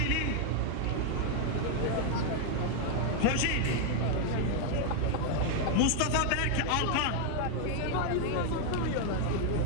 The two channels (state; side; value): different; both; correlation 0.00